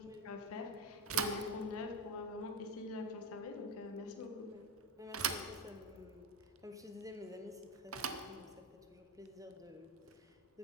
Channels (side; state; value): both; normal; correlation 0.11